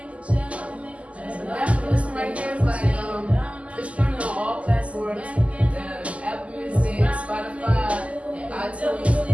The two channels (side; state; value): left; late; 0.064 ms